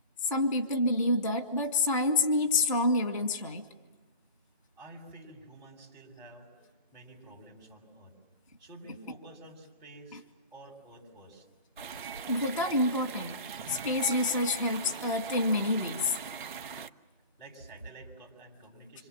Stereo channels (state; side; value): inverted; both; correlation -0.35